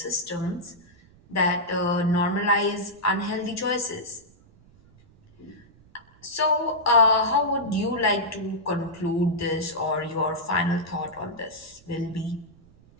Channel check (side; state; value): right; noise; rumble, 27 dB below the sound